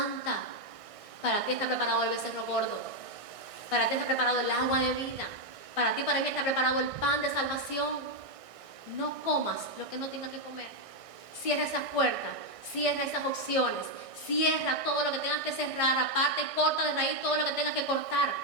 Para ti está preparado el becerro gordo. Para ti está preparado el agua de vida. Para ti, para mí está preparado el pan de salvación. No comas lo que no tengas que comer. Cierra esas puertas, cierra esas opciones, cierra todo lo que tengas que cerrar, aparte y corta de raíz todo lo que tengas que cortar,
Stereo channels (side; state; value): left; late; 1.6 ms